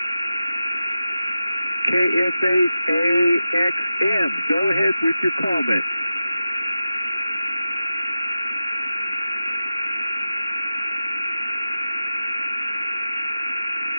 KF8AXM, go ahead with your comment.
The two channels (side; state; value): both; inverted; correlation -0.92